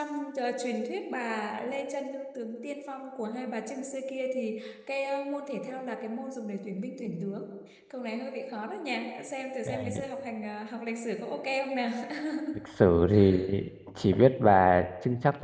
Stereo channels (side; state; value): both; identical; correlation 1.00